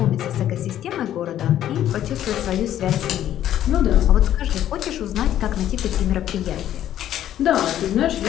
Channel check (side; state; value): right; quieter; 11.6 dB